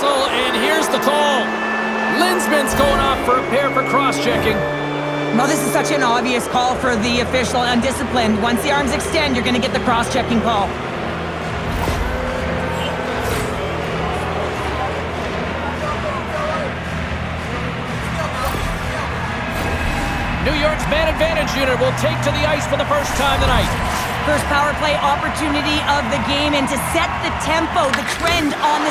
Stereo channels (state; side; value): identical; both; correlation 1.00